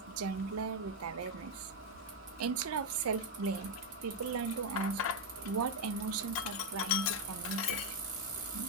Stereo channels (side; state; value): both; normal; correlation 0.03